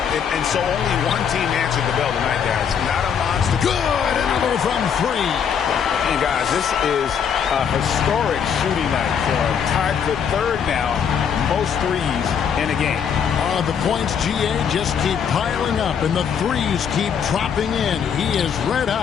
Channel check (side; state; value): right; quieter; 7.5 dB